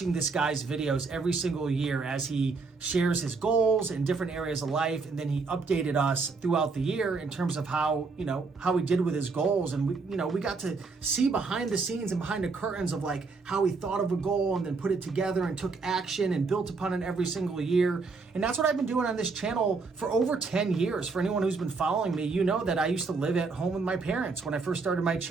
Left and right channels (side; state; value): left; quieter; 4.3 dB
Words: this guy's videos every single year as he shares his goals in different areas of life, and then he updated us throughout the year in terms of how he did with his goals. And we got to see behind the scenes and behind the curtains of like how he thought of a goal and then put it together and took action and built upon it every single year. And that's what I've been doing on this channel for over 10 years. For anyone who's been following me, you know that I used to live at home with my parents when I first started my